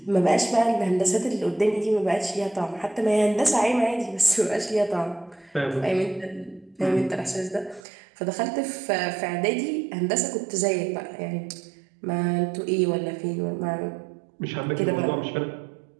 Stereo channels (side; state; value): left; drops out; at 7.8 s